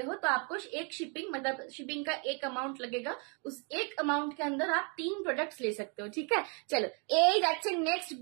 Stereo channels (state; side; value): quieter; left; 36.2 dB